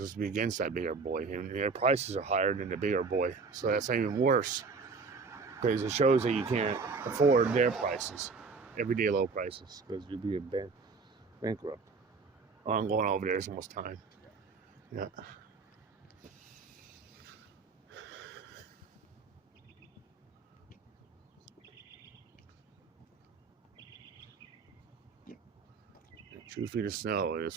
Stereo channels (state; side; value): quieter; left; 4.6 dB